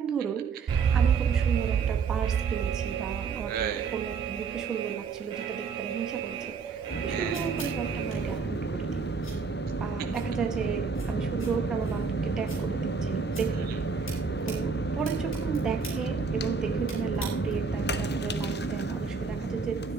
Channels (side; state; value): left; quieter; 5.3 dB